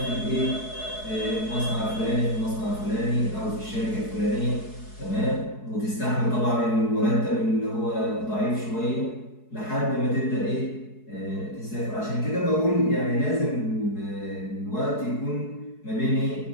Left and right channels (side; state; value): right; late; 4.7 ms